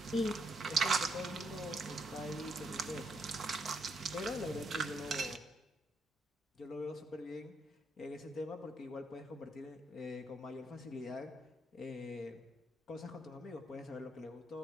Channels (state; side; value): normal; both; correlation 0.76